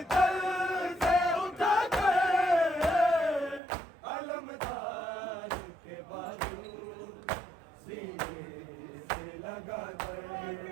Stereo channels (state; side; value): drops out; left; at 3.6 s